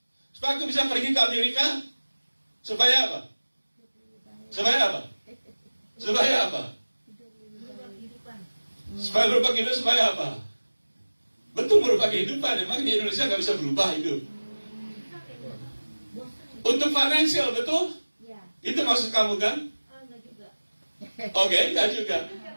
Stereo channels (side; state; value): both; inverted; correlation -1.00